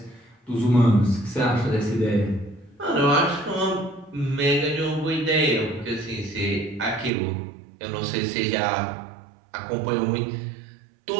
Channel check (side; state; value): left; drops out; at 7.1 s